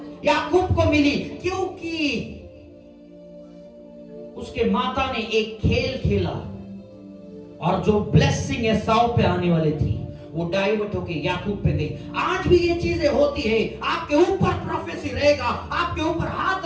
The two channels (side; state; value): both; identical; correlation 1.00